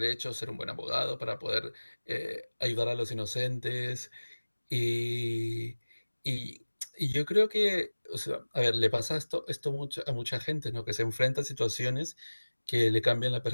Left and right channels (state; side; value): inverted; both; correlation -1.00